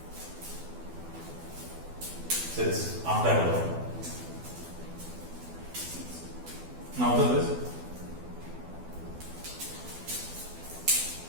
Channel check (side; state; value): left; late; 12 ms